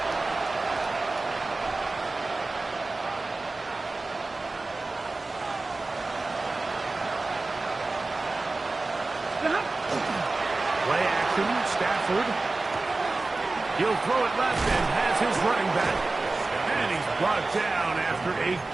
Play action, Stafford. He'll throw it left and has his running back. And he's brought down after a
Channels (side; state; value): left; quieter; 3.4 dB